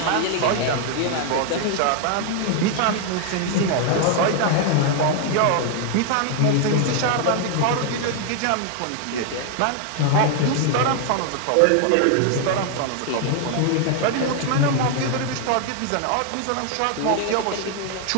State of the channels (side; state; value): both; different; correlation 0.00